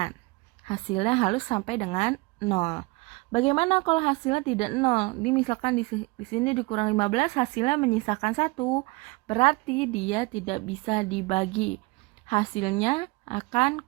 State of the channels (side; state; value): left; quieter; 25.3 dB